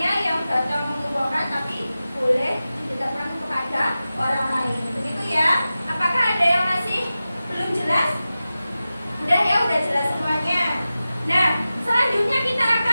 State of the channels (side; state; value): both; inverted; correlation -0.94